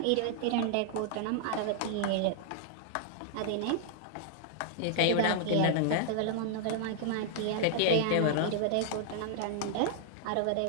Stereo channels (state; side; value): different; both; correlation -0.01